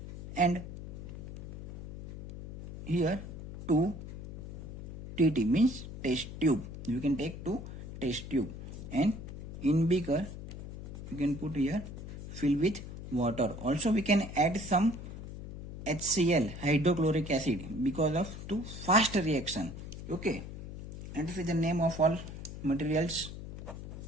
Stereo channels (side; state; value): left; noise; hum, 9 dB below the sound